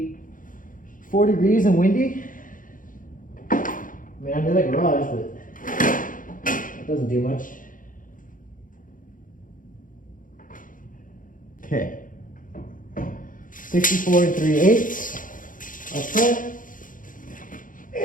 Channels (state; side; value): late; right; 0.39 ms